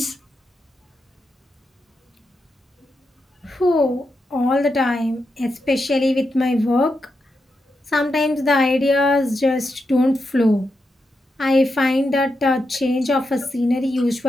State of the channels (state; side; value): normal; both; correlation 0.86